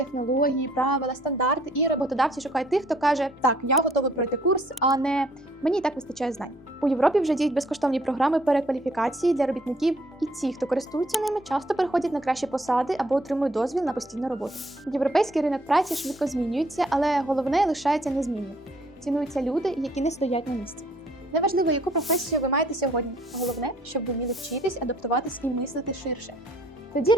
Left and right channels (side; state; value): both; normal; correlation 0.62